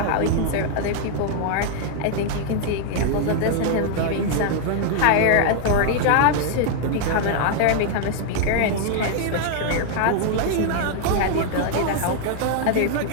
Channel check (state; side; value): different; both; correlation 0.00